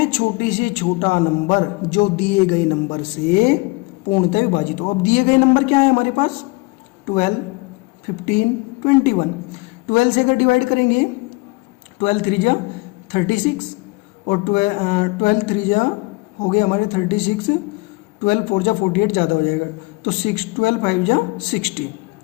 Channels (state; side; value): quieter; right; 25.9 dB